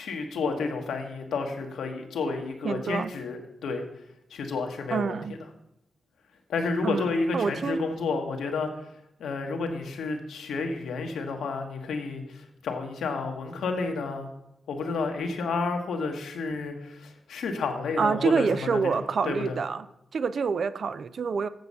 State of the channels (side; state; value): both; normal; correlation 0.78